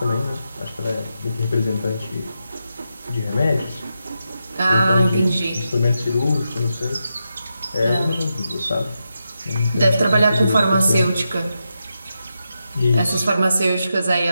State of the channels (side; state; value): both; inverted; correlation -0.87